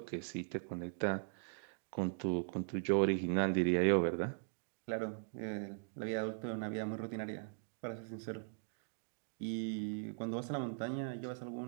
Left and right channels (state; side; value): silent; left; digital silence